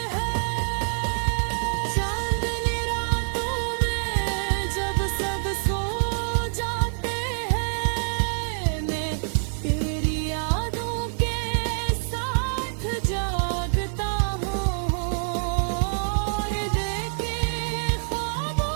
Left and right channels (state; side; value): silent; left; 61 dB below the other